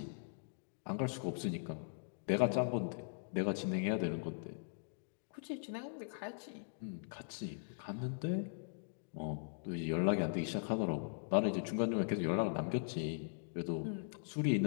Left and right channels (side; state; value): right; silent; digital silence